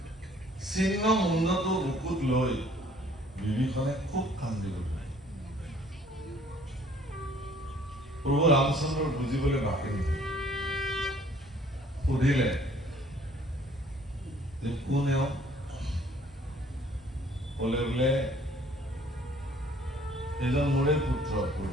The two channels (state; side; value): normal; both; correlation 0.58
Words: চিহ্ন মুণ্ডটো বুকুত লৈ বিভীষণে খুব কান্দি গ'ল প্ৰভু ৰামচন্দ্ৰৰ বুজিবলৈ বাকী নহ'ল সুধিলে যে কোন এওঁ ক'লে বোলে এজন মোৰে পুত্ৰ